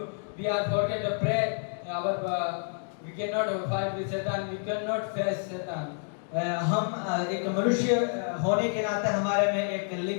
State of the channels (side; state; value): right; silent; 59 dB below the other